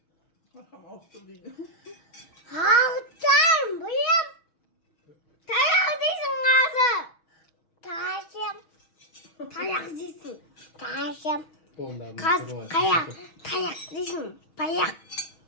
Arkam altta değil. Haftan buyum. Tayak değilsin kızım. Taşım. Tayak değilsin. Taşım. Kız tayak. Tayak değilsin. Payak.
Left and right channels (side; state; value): right; late; 6.2 ms